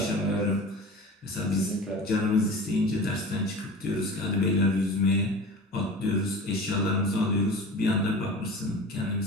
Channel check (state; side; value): normal; both; correlation 0.36